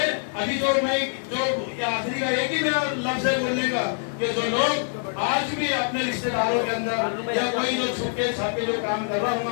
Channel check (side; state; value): right; silent; digital silence